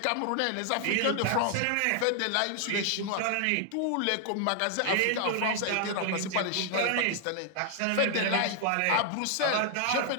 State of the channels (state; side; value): different; both; correlation 0.00